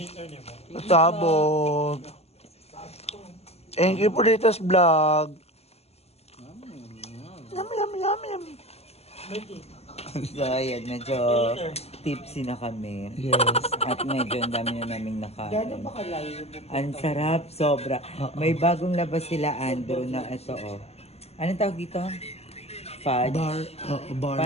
tabog. Thank you for this vlog. Yum, yum, yum, yum. So, ayan, medyo tipsy na kami. Yes. At medyo ang dami na naming nakain. Ang sarap, sobra. May bagong labas sila, Andrew, na ito, oh. Anong tawag dito? Fudge? Bar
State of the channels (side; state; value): right; late; 0.30 ms